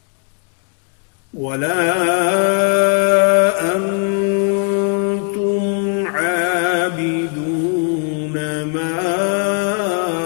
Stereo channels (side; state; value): right; quieter; 37.5 dB